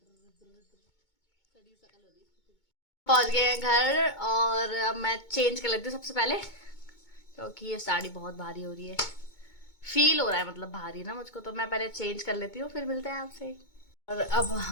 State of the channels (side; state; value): right; late; 2.2 ms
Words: पहुंच गए हैं घर और अब मैं चेंज कर लेती हूँ सबसे पहले, क्योंकि ये साड़ी बहुत भारी हो रही है। फील हो रहा है मतलब भारी ना मुझको, तो मैं पहले चेंज कर लेती हूँ, फिर मिलते हैं आपसे। और अब